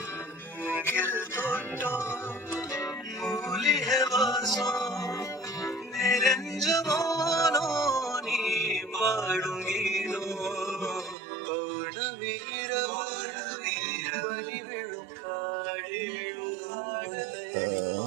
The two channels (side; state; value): left; drops out; at 11.2 s